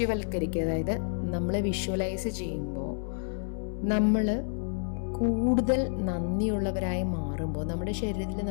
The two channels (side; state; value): right; silent; 58 dB below the other